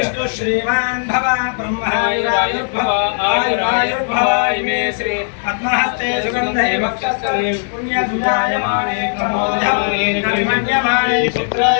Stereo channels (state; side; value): silent; right; 63 dB below the other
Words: श्रीमान् भव ब्रह्मायुरायुर्भव आयुरायुर्भव इमे श्री पद्महस्ते सुगन्धे वक्षस्थले पुण्यसुजायमाने कर्मण्यमाने